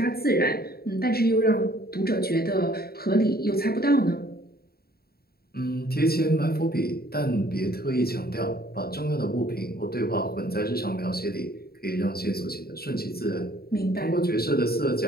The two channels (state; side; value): late; right; 0.45 ms